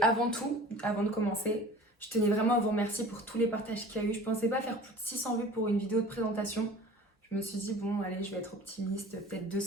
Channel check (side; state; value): both; normal; correlation 0.43